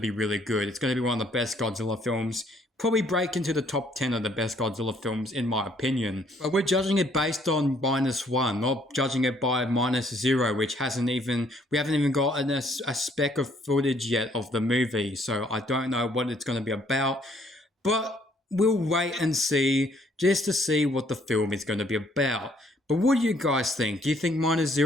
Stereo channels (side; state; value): both; normal; correlation 0.65